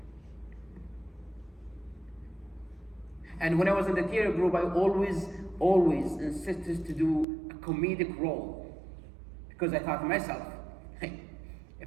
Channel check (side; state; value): left; drops out; at 7.2 s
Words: And when I was in the theater group, I always insisted to do a comedic role, because I thought to myself, hey,